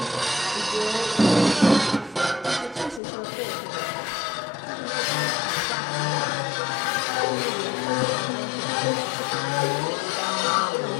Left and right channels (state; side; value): drops out; right; at 3.0 s